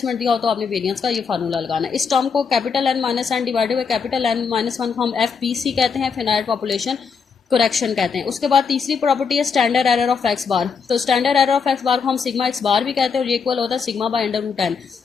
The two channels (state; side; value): quieter; right; 5.7 dB